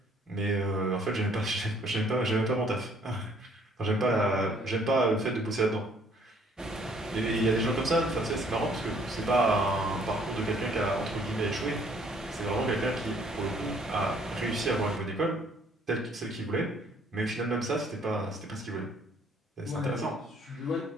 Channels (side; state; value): both; normal; correlation 0.62